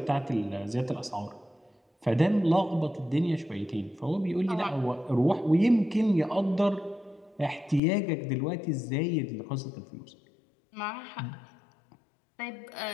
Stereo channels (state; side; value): drops out; right; at 7.8 s